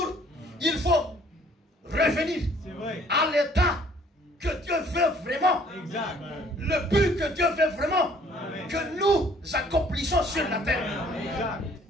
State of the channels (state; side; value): normal; both; correlation 0.58